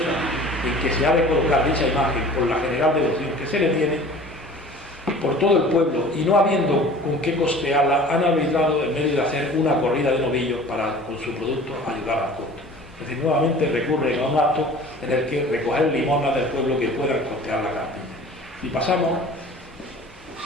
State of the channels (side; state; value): both; normal; correlation 0.44